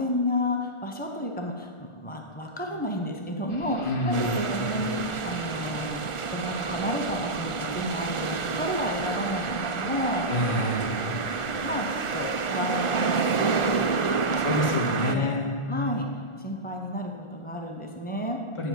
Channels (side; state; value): right; late; 1.4 ms